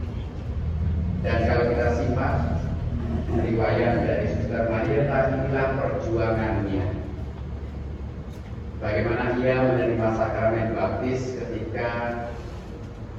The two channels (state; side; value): identical; both; correlation 1.00